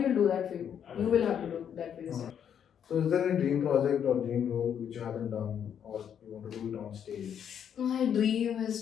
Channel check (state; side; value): quieter; right; 8.6 dB